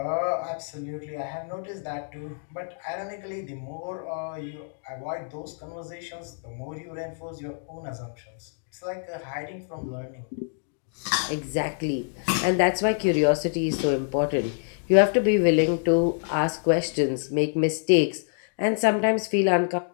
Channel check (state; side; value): silent; right; digital silence